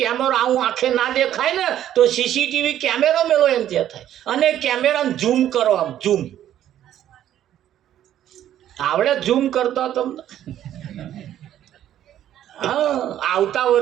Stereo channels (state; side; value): quieter; left; 11.5 dB